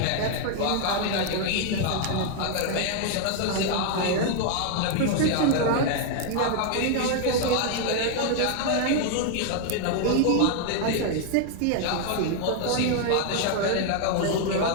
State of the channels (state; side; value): different; both; correlation 0.00